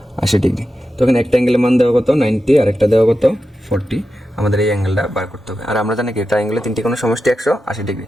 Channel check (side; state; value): both; normal; correlation 0.90